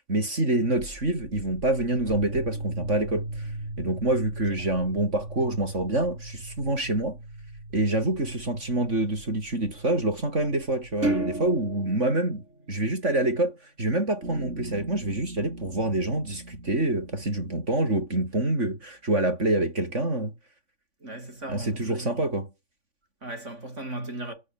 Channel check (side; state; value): left; late; 3.5 ms